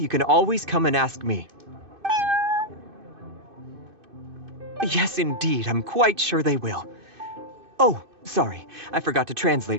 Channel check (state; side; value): late; left; 2.6 ms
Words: can always come and ask me. Yes, indeed, I'm quite sure they will. Oh, sorry, I forgot to